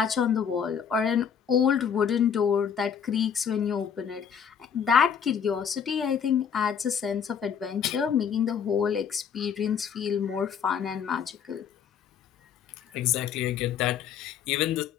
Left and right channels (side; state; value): right; quieter; 7.6 dB